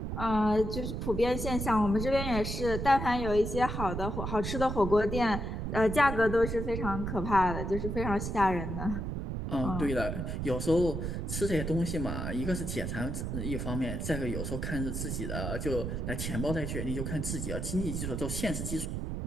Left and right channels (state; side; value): noise; right; rumble, 3 dB below the sound